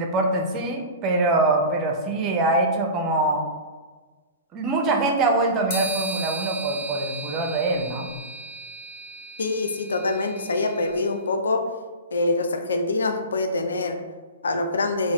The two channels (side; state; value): both; inverted; correlation -0.32